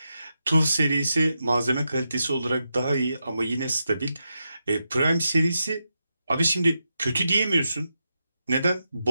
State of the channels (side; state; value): both; inverted; correlation -0.87